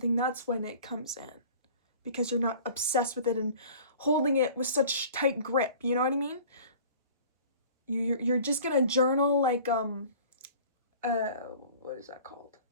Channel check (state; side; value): inverted; both; correlation -0.46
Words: that's when it comes in. Because you're not obsessed with it and holding it with such tight grip, you know what I mean? You're just gonna journal like, what is that called?